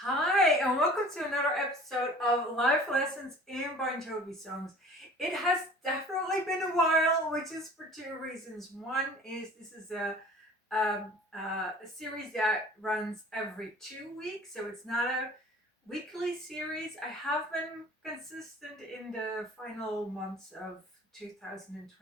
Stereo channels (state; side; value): normal; both; correlation 0.46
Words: Hi, and welcome to another episode of Life Lessons in Bon Jovi songs. It has definitely been a while, which is for two reasons. One is this is a series that runs every 2 weeks, so it's not a weekly series. I have been consistent in the final months of